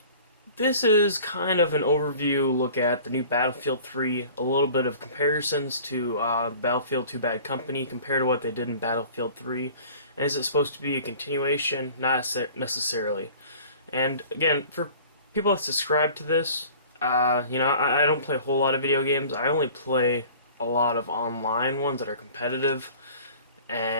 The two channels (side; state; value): both; inverted; correlation -0.46